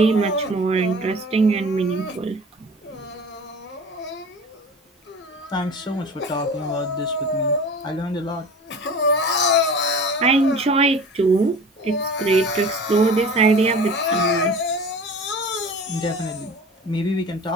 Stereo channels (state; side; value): normal; both; correlation 0.39